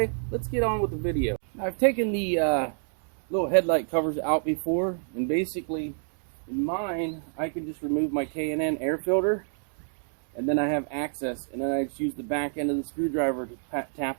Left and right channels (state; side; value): silent; left; digital silence